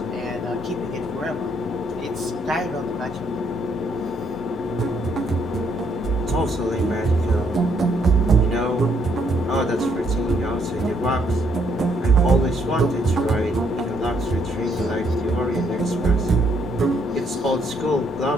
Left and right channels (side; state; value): both; normal; correlation 0.71